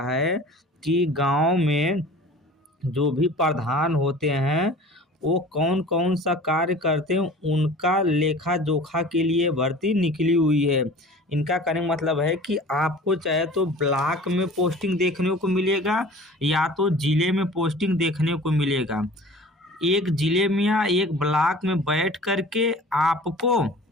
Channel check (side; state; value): both; normal; correlation 0.43